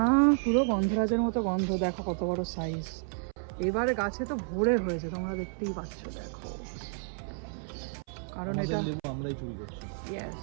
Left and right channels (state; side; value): silent; left; 57 dB below the other